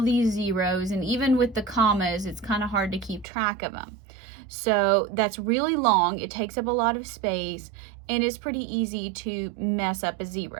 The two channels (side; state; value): left; drops out; at 3.2 s